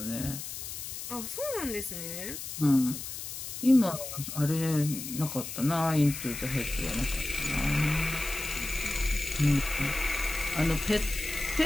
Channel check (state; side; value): noise; left; hiss, 8 dB below the sound